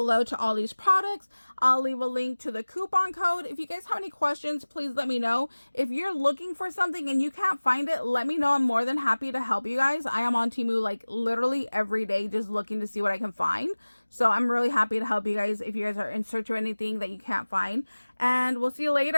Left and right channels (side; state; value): both; inverted; correlation -1.00